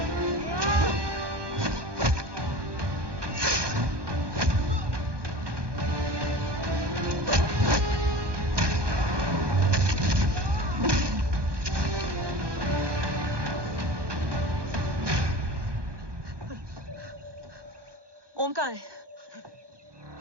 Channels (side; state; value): left; late; 1.2 ms